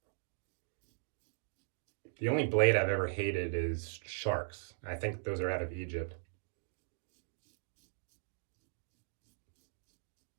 The only blade I've ever hated is sharks. I think those are out of Egypt.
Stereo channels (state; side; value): silent; left; digital silence